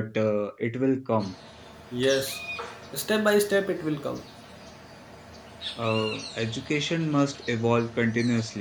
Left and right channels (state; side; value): identical; both; correlation 1.00